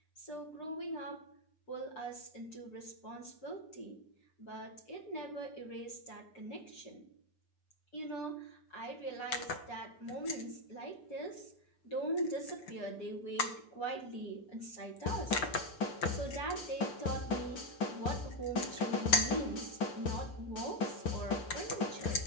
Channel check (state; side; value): late; right; 6.8 ms